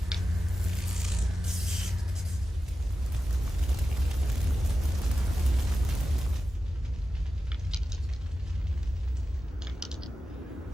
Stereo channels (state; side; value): normal; both; correlation 0.93